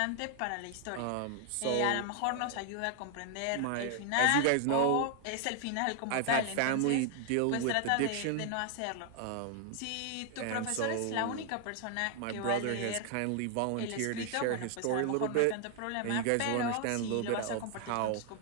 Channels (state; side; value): different; both; correlation 0.00